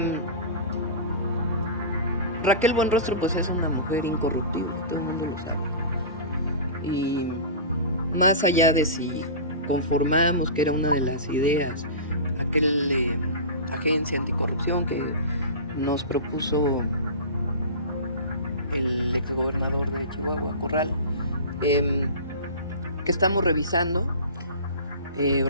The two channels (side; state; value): both; inverted; correlation -0.31